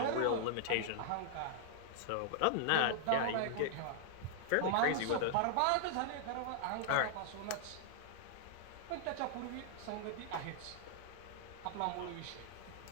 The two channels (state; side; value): different; both; correlation -0.01